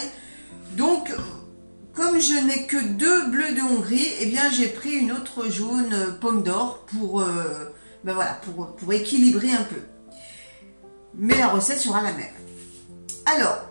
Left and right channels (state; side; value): inverted; both; correlation -1.00